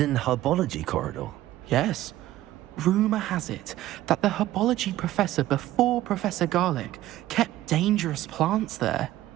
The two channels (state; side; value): quieter; left; 14.8 dB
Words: herbology corridor? Yes. Rumour has it that the herbology professor before Professor Garlic kept dangerous plants there.